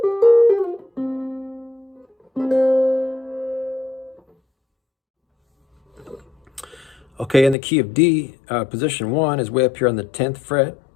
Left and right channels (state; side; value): drops out; right; at 7.6 s